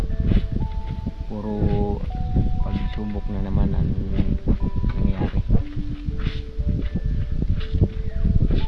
puro pagsubok na naman ang nangyari.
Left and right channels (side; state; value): both; identical; correlation 1.00